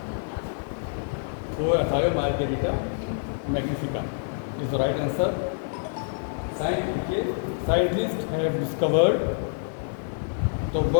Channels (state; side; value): silent; right; 60 dB below the other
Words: वो Thiomargarita magnifica is the right answer. Scientists have discovered the